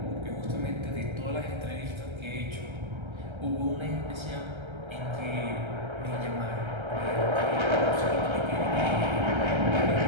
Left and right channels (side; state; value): left; late; 1.3 ms